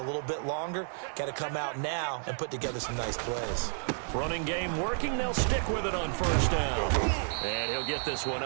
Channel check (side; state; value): left; silent; 55 dB below the other